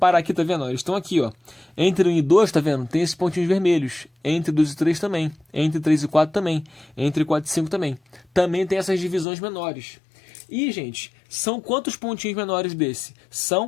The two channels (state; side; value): drops out; right; at 9.2 s